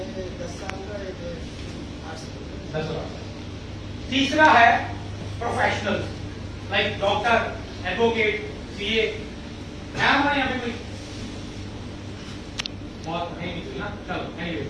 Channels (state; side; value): identical; both; correlation 1.00